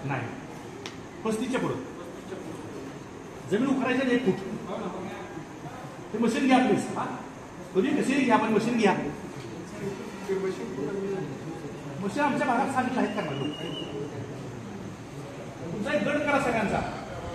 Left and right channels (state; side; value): identical; both; correlation 1.00